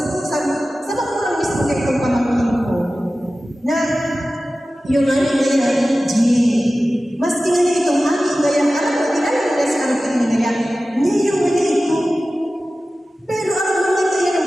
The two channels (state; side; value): normal; both; correlation 0.95